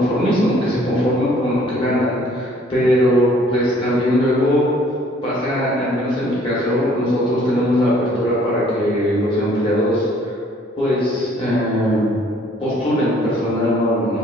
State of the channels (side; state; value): both; normal; correlation 0.59